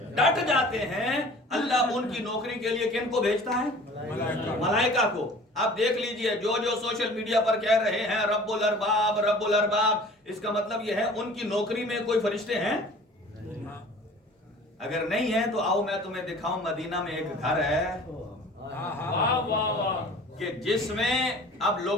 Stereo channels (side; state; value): both; normal; correlation 0.46